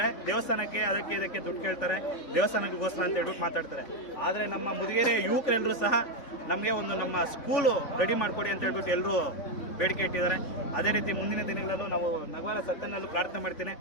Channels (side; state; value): right; late; 3.4 ms